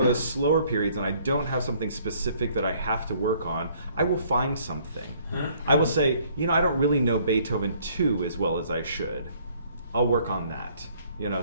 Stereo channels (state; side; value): inverted; both; correlation -0.61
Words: of those slower periods and I don't have something specific that I have to work on, I will find something. I will say, you know, I don't really know Beethoven 2 as well as I should. I'll work on that. You know,